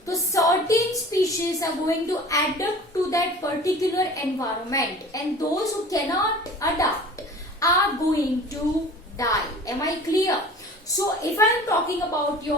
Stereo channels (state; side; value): normal; both; correlation 0.42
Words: तो certain species are going to adapt to that particular environment, and those who cannot adapt are going to die. Am I clear? So, if I am talking about